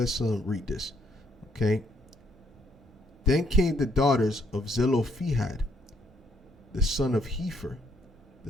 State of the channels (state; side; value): normal; both; correlation 0.69